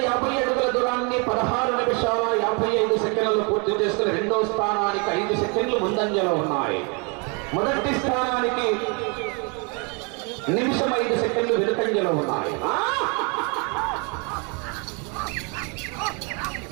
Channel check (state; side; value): quieter; left; 33.4 dB